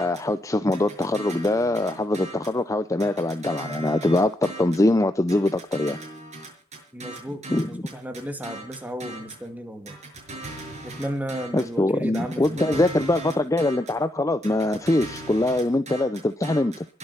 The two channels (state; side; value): normal; both; correlation 0.80